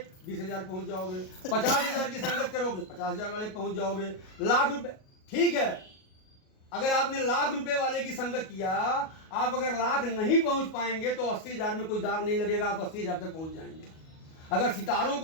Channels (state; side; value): late; right; 38 ms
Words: 20,000 पहुंच जाओगे। 50,000 की संगत करोगे 50,000 वाले पहुंच जाओगे। लाख रुपए ठीक है, अगर आपने लाख रुपए वाले की संगत किया, आप अगर लाख नहीं पहुंच पाएंगे तो 80,000 में कोई दाग नहीं लगेगा, आप 80,000 तक पहुंच जाएंगे। अगर सितारों